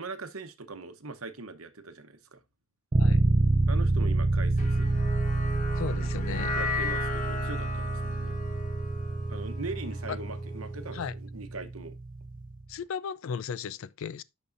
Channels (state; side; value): normal; both; correlation 0.80